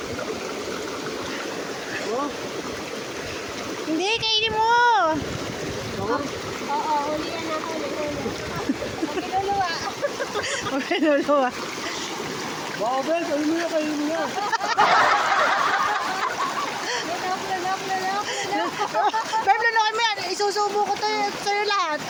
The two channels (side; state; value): both; identical; correlation 1.00